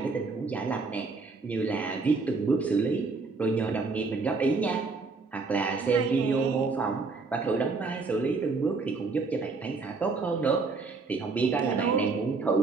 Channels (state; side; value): quieter; left; 4.2 dB